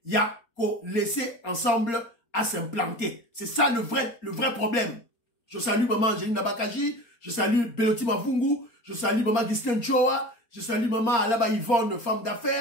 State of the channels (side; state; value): right; late; 4.3 ms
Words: il y a qu'au laisser ensemble à s'implanter. C'est ça le vrai problème. Je salue maman Angeline Nabakaji, je salue Beloti Mavungu, je salue maman Gisken Choa, je salue maman Alaba Yvonne, femme